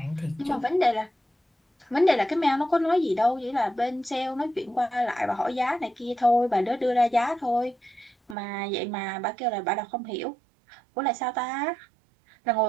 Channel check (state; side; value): drops out; left; at 8.3 s